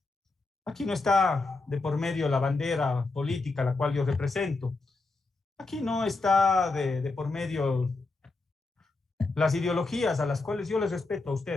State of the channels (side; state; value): right; quieter; 3.5 dB